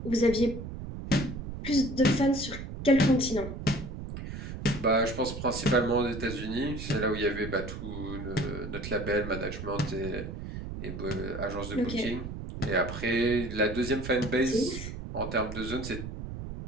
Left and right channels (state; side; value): noise; right; rumble, 8 dB below the sound